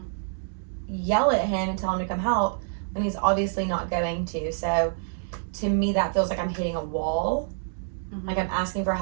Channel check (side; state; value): left; silent; digital silence